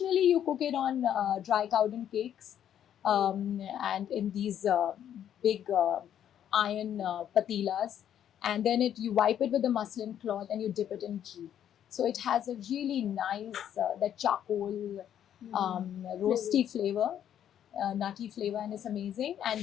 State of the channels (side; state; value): right; quieter; 10.0 dB